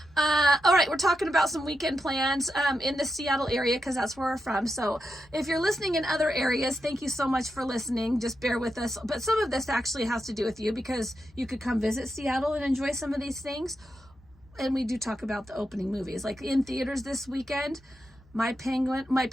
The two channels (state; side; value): normal; both; correlation 0.86